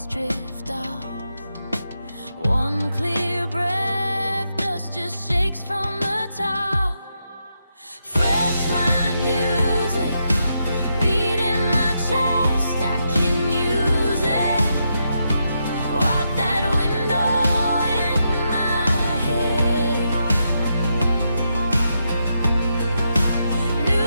drift off. One clear breath, dust just shakes from the top. Fresh mind music, beat in my chest, I can use it. Wipe that window in my head.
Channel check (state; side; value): inverted; both; correlation -0.82